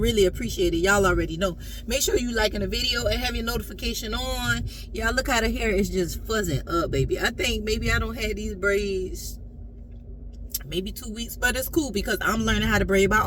appreciate it. Y'all already know. Make sure you liking the video and have your notification on. Y'all, look how the hair is just fuzzing up, baby. I think maybe I don't have these braids maybe 2 weeks, but it's cool because I'm learning how to braid my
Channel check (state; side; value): identical; both; correlation 1.00